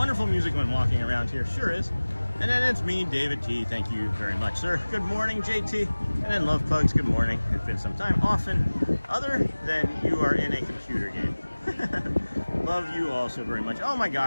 music when walking around here. Sure is. And then it's me, David T. Thank you very much, sir. Good morning, JT. And then Love Pugs, good morning. It's been some time. Often, other than you are in a computer game. Love you all so very much. Oh my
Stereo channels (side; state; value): both; inverted; correlation -1.00